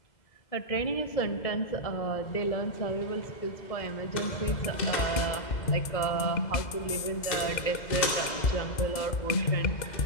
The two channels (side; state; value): right; late; 2.0 ms